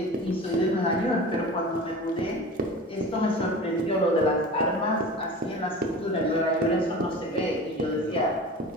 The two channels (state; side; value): normal; both; correlation 0.36